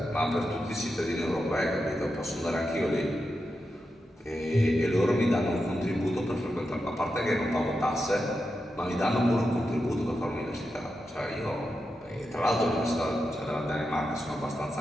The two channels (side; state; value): both; normal; correlation 0.88